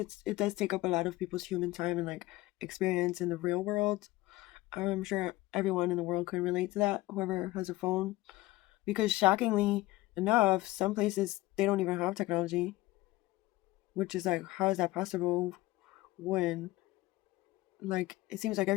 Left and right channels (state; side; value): quieter; right; 18.5 dB